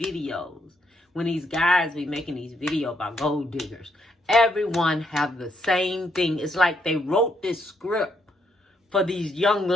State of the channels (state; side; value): normal; both; correlation 0.75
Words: when these guys be making these videos about gold diggers, everyone have the same thing. It's like they wrote this script for these young